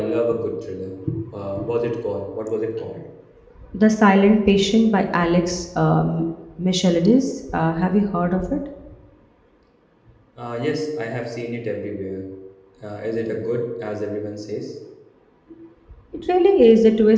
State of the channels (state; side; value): identical; both; correlation 1.00